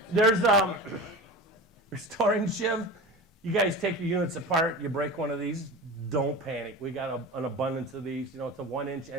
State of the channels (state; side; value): normal; both; correlation 0.31